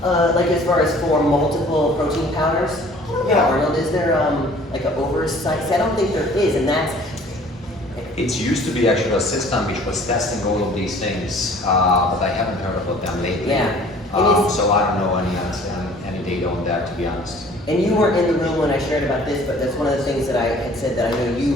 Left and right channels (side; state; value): both; normal; correlation 0.52